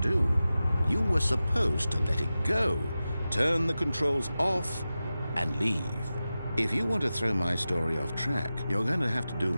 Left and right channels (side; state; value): both; inverted; correlation -0.94